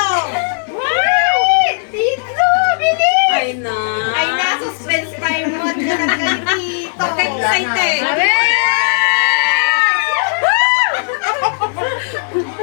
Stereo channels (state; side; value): silent; right; digital silence